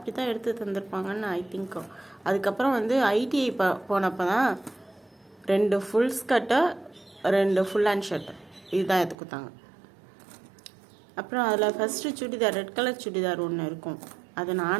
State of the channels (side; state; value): left; drops out; at 9.2 s